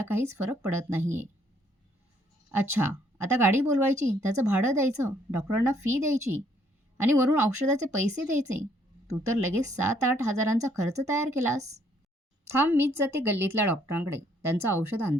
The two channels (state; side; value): normal; both; correlation 0.67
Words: काहीच फरक पडत नाहीये. अच्छा, आता गाडी बोलवायची, त्याचं भाडं द्यायचं, डॉक्टरांना फी द्यायची आणि वरून औषधाचे पैसे द्यायचे. तू तर लगेच 7-8 हजारांचा खर्च तयार केलास. थांब, मीच जाते गल्लीतल्या डॉक्टरांकडे, त्यांचं औषध